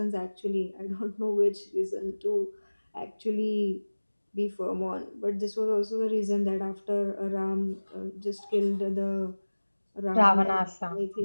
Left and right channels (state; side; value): inverted; both; correlation -1.00